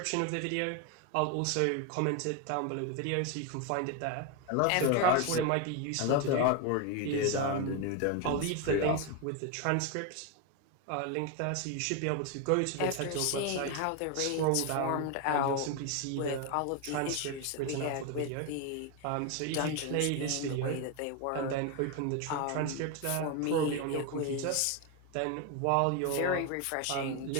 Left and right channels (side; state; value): both; different; correlation 0.01